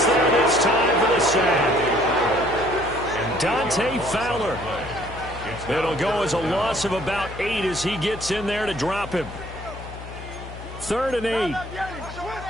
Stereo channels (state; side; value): noise; left; hum, 13 dB below the sound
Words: there this time for the sack. Dante Fowler. It'll go as a loss of about 8 as he gets in there to drop him. 3rd and 8.